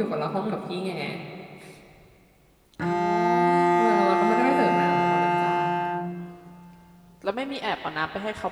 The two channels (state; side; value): identical; both; correlation 1.00